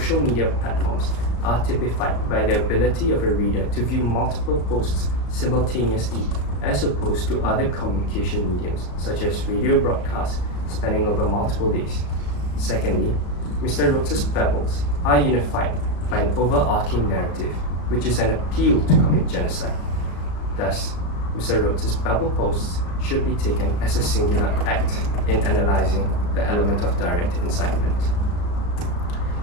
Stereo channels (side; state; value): right; late; 34 ms